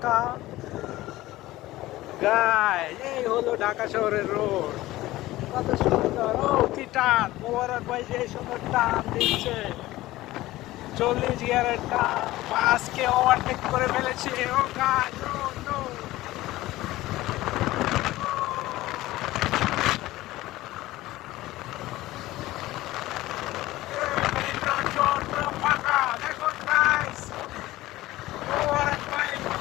গাইস এই হলো ঢাকা শহরের রোড, কত সুন্দর। ও কি টান, মোবারক ভাই যে সুন্দর টান দিচ্ছে, 40 গিয়ারের টান। বাসকে ওভারটেক করে ফেলেছে। ও গাইস, ও নো। ফাঁকা দেখুন গাইস, মোবারক ভাই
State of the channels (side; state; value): right; quieter; 17.1 dB